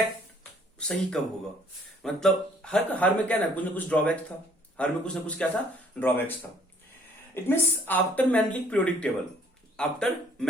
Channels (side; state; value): both; normal; correlation 0.61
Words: सही कब होगा। मतलब हर में क्या ना कुछ ड्रॉबैक्स था, हर में कुछ ना कुछ क्या था, ड्रॉबैक्स था। It means after Mendeleev periodic table, after